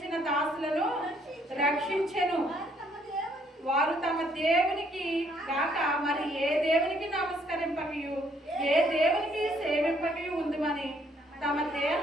దాసులను రక్షించెను. వారు తమ దేవునికి కాక మరి ఏ దేవునికి నమస్కరింపకయు, ఏ దేవునికి సేవింపకయు ఉందుమని తమ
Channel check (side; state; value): both; normal; correlation 0.67